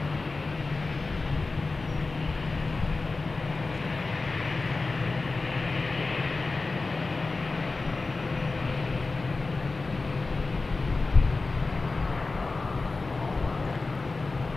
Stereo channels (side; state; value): right; quieter; 3.7 dB